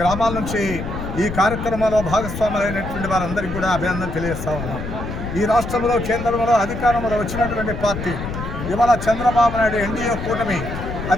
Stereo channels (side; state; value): left; noise; rumble, 7 dB below the sound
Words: గ్రామాల నుంచి ఈ కార్యక్రమంలో భాగస్వాములైనటువంటి వారందరికీ కూడా అభినందన తెలియజేస్తా ఉన్నాం. ఈ రాష్ట్రంలో కేంద్రంలో అధికారంలో వచ్చినటువంటి పార్టీ ఇవాళ చంద్రబాబు నాయుడు ఎన్డీఏ కూటమి,